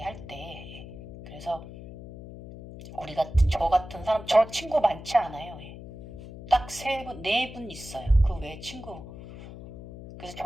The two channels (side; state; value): left; noise; hum, 13 dB below the sound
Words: 할 때. 그래서 저 같은 사람, 저 친구 많지 않아요. 딱 3분, 4분 있어요. 그 외에 친구. 그래서